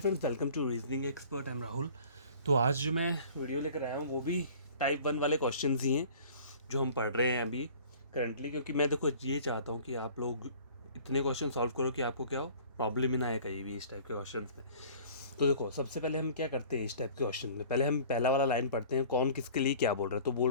welcome to reasoning expert. I am Rahul. तो आज जो मैं वीडियो लेकर आया हूँ वो भी टाइप 1 वाले क्वेश्चंस ही हैं जो हम पढ़ रहे हैं अभी करंटली, क्योंकि मैं देखो ये चाहता हूँ कि आप लोग इतने क्वेश्चन सॉल्व करो कि आपको क्या हो, प्रॉब्लम ही ना आए कहीं भी इस टाइप के क्वेश्चंस में। तो देखो, सबसे पहले हम क्या करते हैं इस टाइप के क्वेश्चन में, पहले हम पहला वाला लाइन पढ़ते हैं। कौन किसके लिए क्या बोल रहा है? तो बोल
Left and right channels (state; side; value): inverted; both; correlation -0.48